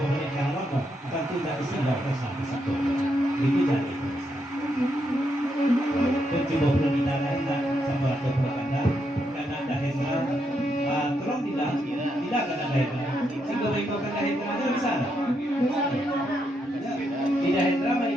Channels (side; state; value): both; normal; correlation 0.80